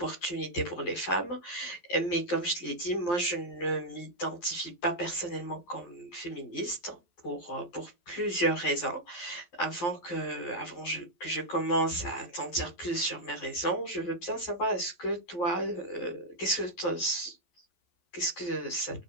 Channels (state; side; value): late; right; 11 ms